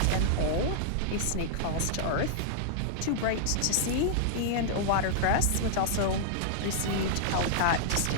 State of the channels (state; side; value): different; both; correlation -0.01